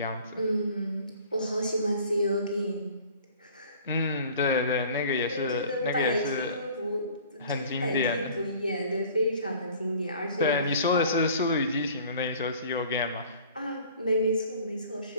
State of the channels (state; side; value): inverted; both; correlation -0.49